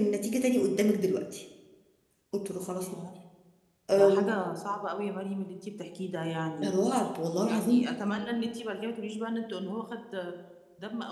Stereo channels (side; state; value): both; identical; correlation 1.00